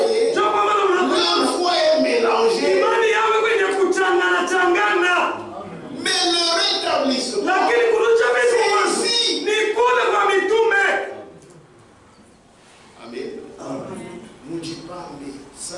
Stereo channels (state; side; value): identical; both; correlation 1.00